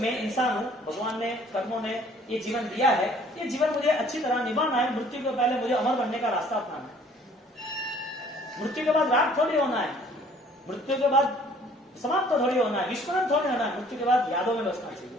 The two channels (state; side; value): normal; both; correlation 0.56